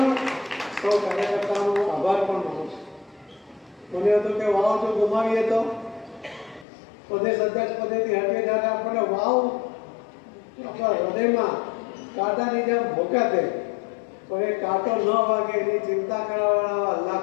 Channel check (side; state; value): right; drops out; at 6.7 s